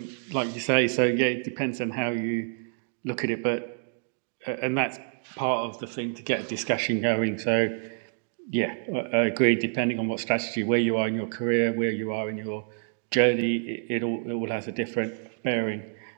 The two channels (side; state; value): left; silent; digital silence